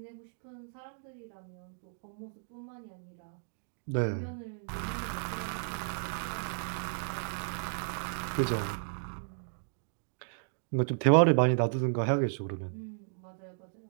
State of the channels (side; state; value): left; silent; digital silence